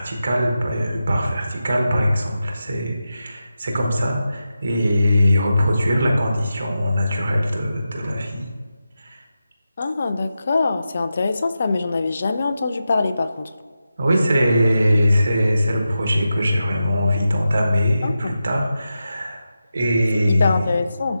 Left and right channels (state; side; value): inverted; both; correlation -0.90